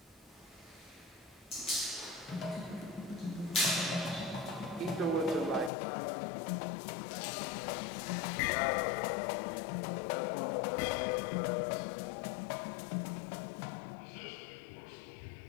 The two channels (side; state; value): right; drops out; at 5.7 s